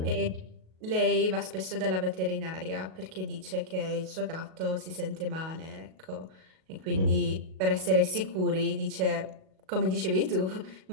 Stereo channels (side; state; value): left; late; 37 ms